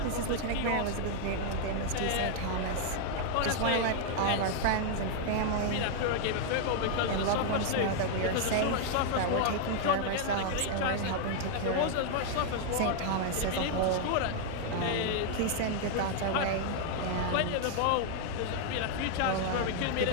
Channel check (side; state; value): both; different; correlation 0.00